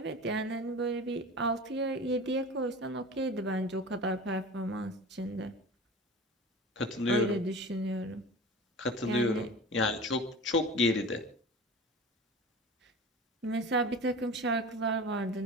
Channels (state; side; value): normal; both; correlation 0.35